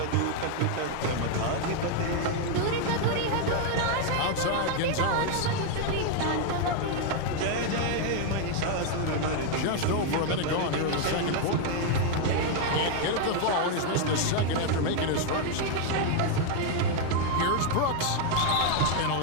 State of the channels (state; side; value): different; both; correlation 0.00